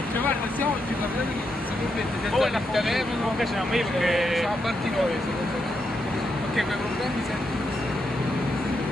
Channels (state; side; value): normal; both; correlation 0.82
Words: Guarda, se oggi poi la telefono non piaceva io perché siamo partiti noi. Ok, quei problemi sempre.